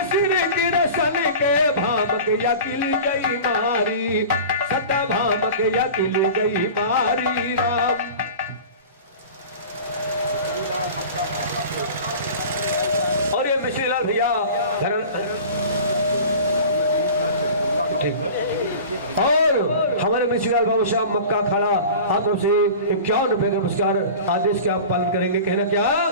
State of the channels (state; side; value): inverted; both; correlation -0.37